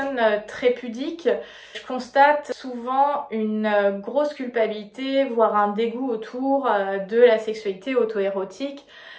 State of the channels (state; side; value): identical; both; correlation 1.00